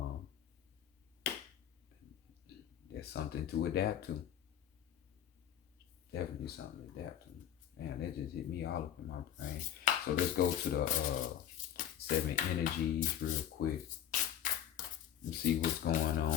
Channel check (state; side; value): quieter; right; 10.5 dB